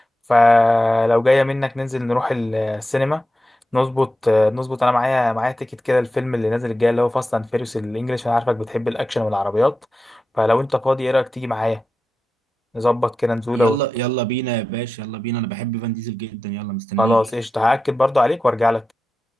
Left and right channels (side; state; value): both; normal; correlation 0.91